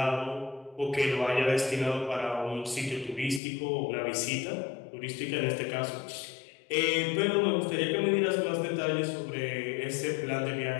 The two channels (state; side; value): drops out; right; at 3.4 s